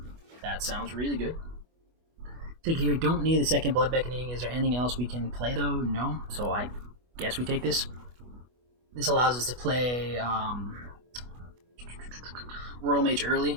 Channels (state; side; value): late; left; 24 ms